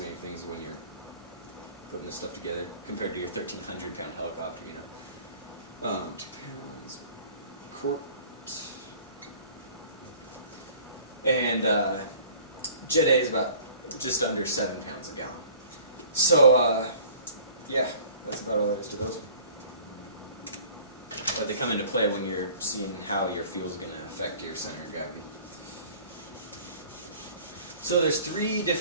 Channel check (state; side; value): inverted; both; correlation -0.49